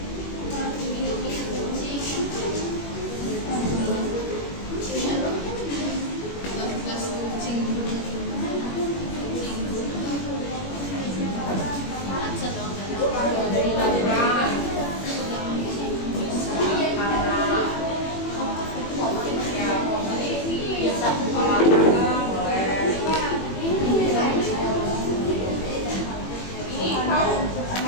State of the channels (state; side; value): late; right; 21 ms